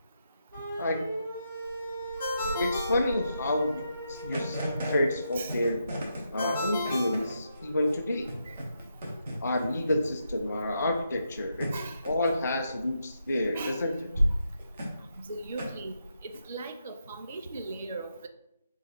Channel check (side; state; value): both; inverted; correlation -0.82